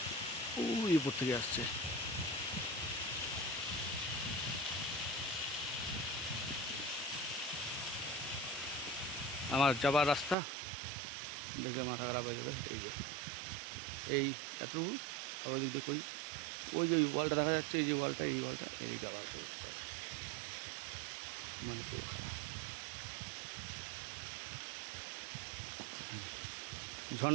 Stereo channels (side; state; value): left; drops out; at 10.4 s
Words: ওই উপর থেকে আসছে। আমার যাবার রাস্তা দেখলে মাথা খারাপ হয়ে যাবে। এই যে এই এতটুকু, আবার দিক দিয়ে কই ওই যে ওয়ালটা দেখা যাচ্ছে, এই যে ওয়ালটা, এই ওয়ালটা এদিকে আবার মানে পুরো খারাপ।